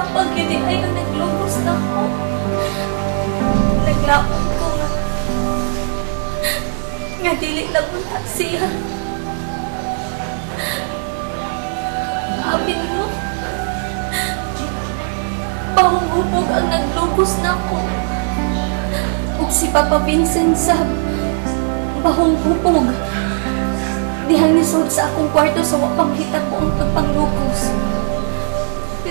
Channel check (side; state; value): left; silent; 67 dB below the other